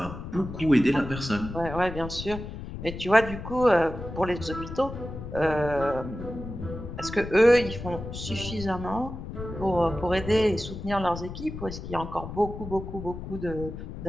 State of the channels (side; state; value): left; noise; rumble, 9 dB below the sound